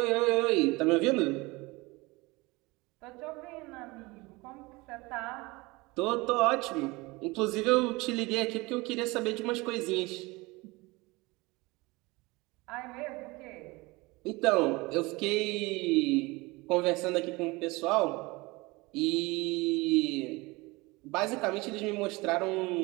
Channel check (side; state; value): left; quieter; 23.5 dB